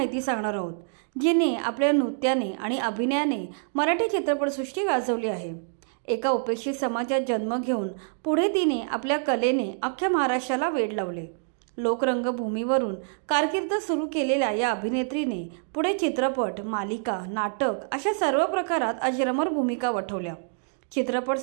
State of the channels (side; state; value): left; silent; 61 dB below the other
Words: सांगणार आहोत, जिने आपल्या नृत्याने आणि अभिनयाने मराठी चित्रपटसृष्टी गाजवली आहे। एका उपेक्षित समाजात जन्म घेऊन पुढे तिने आपल्या कलेने अख्ख्या महाराष्ट्राला वेड लावले। लोकरंगभूमीवरून कारकीर्द सुरू केलेल्या या अभिनेत्रीने पुढे चित्रपट, मालिका, नाटक अशा सर्व प्रकारात अजरामर भूमिका वठवल्या।